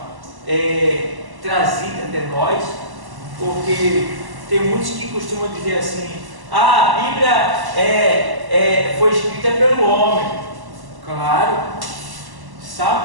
trazida até nós, porque tem muitos que costumam dizer assim: a Bíblia foi escrita pelo homem. Claro.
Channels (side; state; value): left; late; 1.1 ms